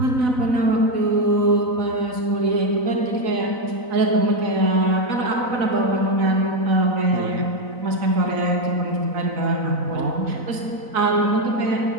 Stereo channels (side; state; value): left; late; 4.0 ms